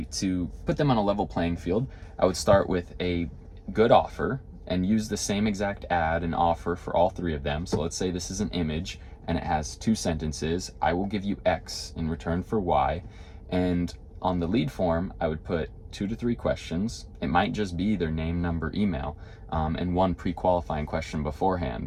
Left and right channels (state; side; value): identical; both; correlation 1.00